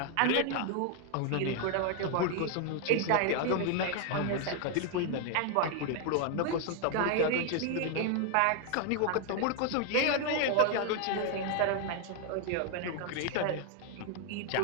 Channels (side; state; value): both; different; correlation 0.00